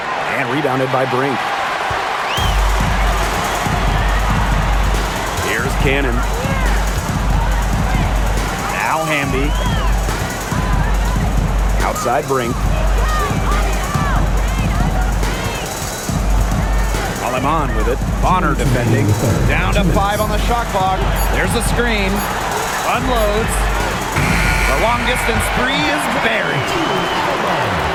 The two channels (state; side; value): identical; both; correlation 1.00